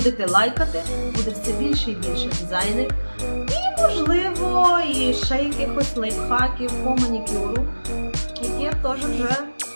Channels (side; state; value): both; inverted; correlation -1.00